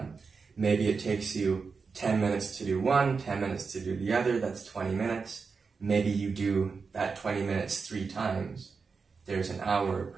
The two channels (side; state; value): left; quieter; 5.0 dB